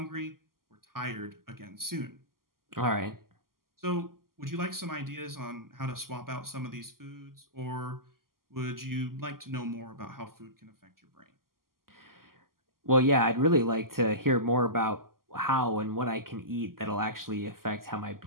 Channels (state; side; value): late; left; 0.92 ms